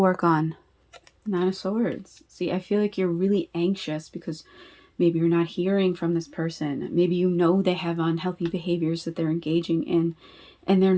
on, Nine of Swords. See, I feel like you're really anxious because maybe you're not hearing from this person. Maybe they have unhealthy behaviors that they're engaging in, and they're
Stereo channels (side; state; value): both; identical; correlation 1.00